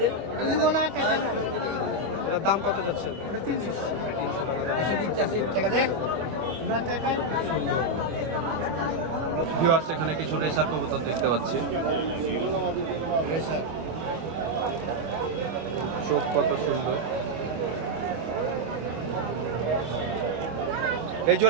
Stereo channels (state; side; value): late; left; 25 ms